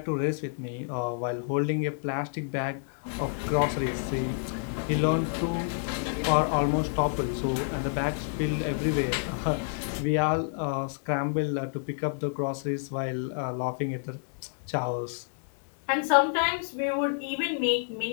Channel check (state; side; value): silent; right; 59 dB below the other